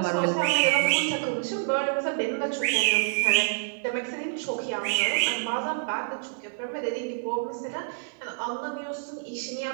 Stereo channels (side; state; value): left; silent; digital silence